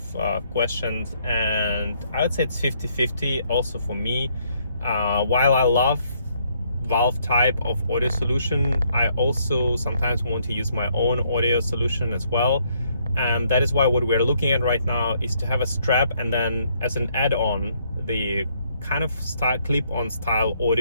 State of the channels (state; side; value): inverted; both; correlation -0.70